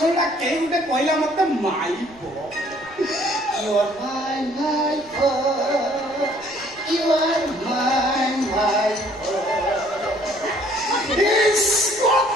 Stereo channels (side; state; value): right; noise; rumble, 25 dB below the sound